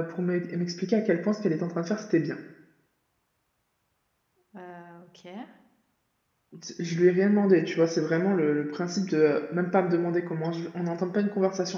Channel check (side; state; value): both; identical; correlation 1.00